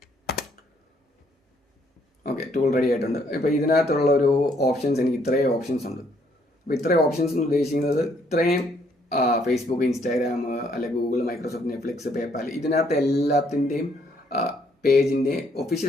ഓക്കെ, ടൂൾ റെഡി ആയിട്ടുണ്ട്. ഇപ്പോൾ ഇതിനകത്തുള്ള ഒരു ഓപ്ഷൻസ്, എനിക്ക് ഇത്രയും ഓപ്ഷൻസ് ഉണ്ട്. അപ്പോൾ ഇത്രയും ഓപ്ഷൻസ് എന്ന് ഉദ്ദേശിക്കുന്നത് ഇത്രയും ഫേസ്ബുക്ക്, ഇൻസ്റ്റാഗ്രാം, അല്ലെങ്കിൽ ഗൂഗിൾ, മൈക്രോസോഫ്റ്റ്, നെറ്റ്ഫ്ലിക്സ്, പേപ്പാൽ, ഇതിനകത്ത് എല്ലാത്തിൻ്റെയും പേജിൻ്റെ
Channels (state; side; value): normal; both; correlation 0.68